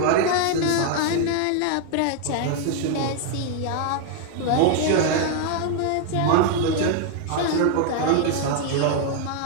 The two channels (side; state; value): both; different; correlation 0.00